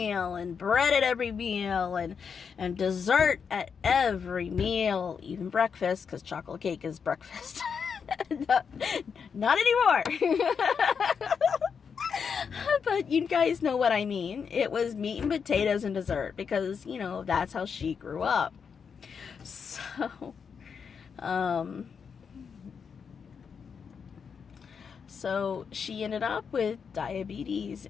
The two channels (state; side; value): quieter; right; 6.4 dB